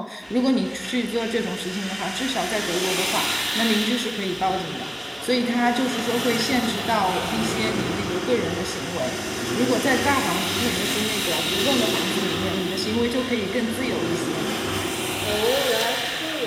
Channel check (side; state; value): both; identical; correlation 1.00